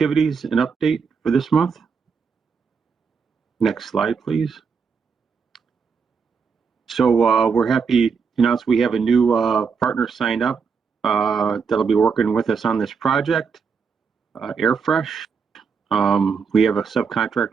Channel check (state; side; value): quieter; left; 5.8 dB